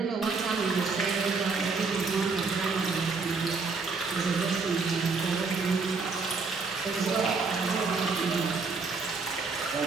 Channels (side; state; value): left; quieter; 4.4 dB